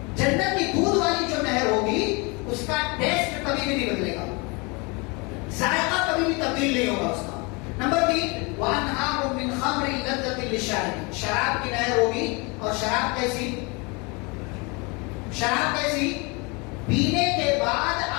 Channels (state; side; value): quieter; right; 29.0 dB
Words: جنت کی دودھ والی جو نہر ہوگی اس کا ٹیسٹ کبھی بھی نہیں بدلے گا، ذائقہ کبھی بھی تبدیل نہیں ہوگا اس کا. نمبر 3 وَأَنْهَارٌ مِّن خَمْرٍ لَذَّةٍ لِّلشَّارِبِينَ. شراب کی نہر ہوگی. اور شراب کیسی؟ شراب کیسی؟ پینے کے بعد